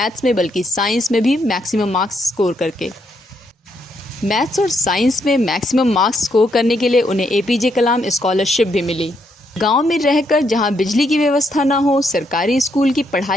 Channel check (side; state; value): both; normal; correlation 0.76